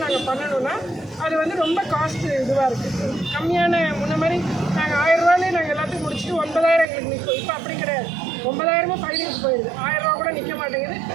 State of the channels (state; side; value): drops out; left; at 6.9 s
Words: நாங்கள் பண்ணணும்னா அது வந்து ரொம்ப காஸ்ட் இதுவாக இருக்குது. கம்மியான முன்ன மாதிரி நாங்கள் 1000 ரூபாயிலே நாங்கள் எல்லாத்தையும் முடிச்சுட்டு 9,000 எங்களுக்கு நிற்கும். இப்போ அப்படி கிடையாது. 9,000 ஃபைலிங்ஸ் போயிடுது. 1000 ரூபா கூட நிற்க மாட்டேங்குது.